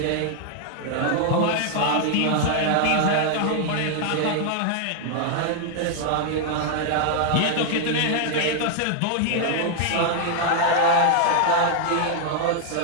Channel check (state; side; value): different; both; correlation 0.00